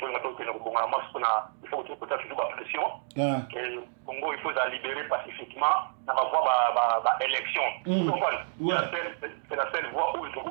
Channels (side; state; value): left; silent; digital silence